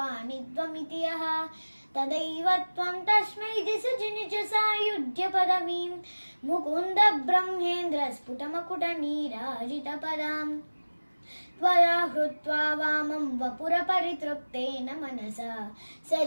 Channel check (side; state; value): both; inverted; correlation -1.00